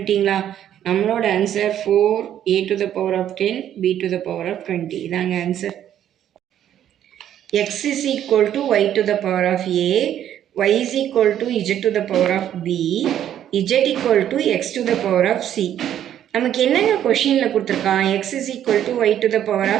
நம்மளோட answer 4a to the power of 10 b to the power of 20 இதாங்க answer. x is equal to y to the power of a, y is equal to z to the power of b, z equal to x to the power of c. நமக்கு என்னங்க கொஷினில் கொடுத்துருக்கான், x is equal to y to the power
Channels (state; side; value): quieter; left; 10.7 dB